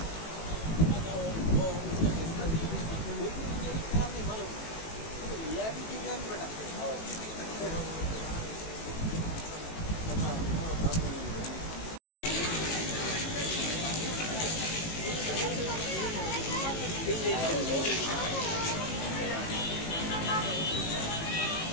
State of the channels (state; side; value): late; right; 18 ms